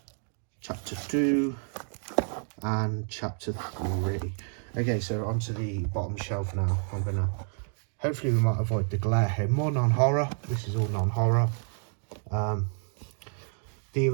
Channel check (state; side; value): silent; left; 56 dB below the other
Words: Chapter 2, and Chapter 3. Okay, so onto the bottom shelf now. I'm gonna, hopefully we might avoid the glare here. More non-horror. This is all non-horror. The